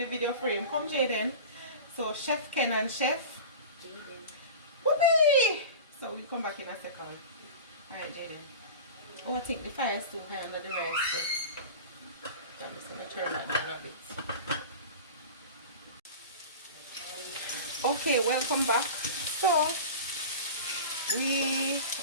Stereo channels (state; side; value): inverted; both; correlation -0.33